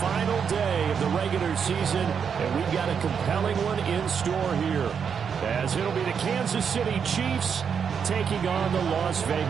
day of the regular season, and we've got a compelling one in store here, as it'll be the Kansas City Chiefs taking on the Las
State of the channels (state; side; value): quieter; left; 6.9 dB